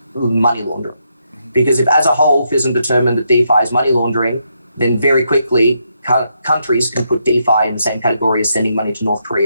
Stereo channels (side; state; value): both; inverted; correlation -0.79